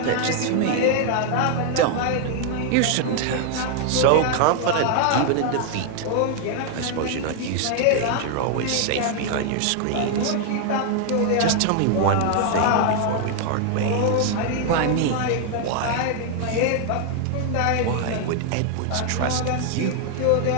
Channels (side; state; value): both; different; correlation 0.00